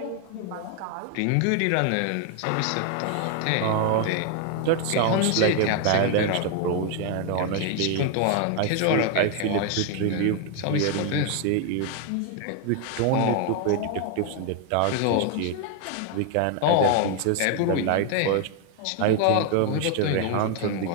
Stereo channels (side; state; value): both; different; correlation 0.01